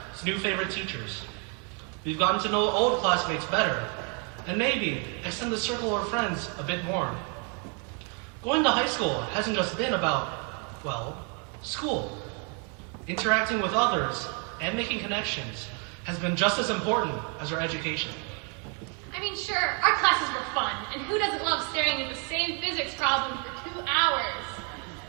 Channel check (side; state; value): left; quieter; 37.5 dB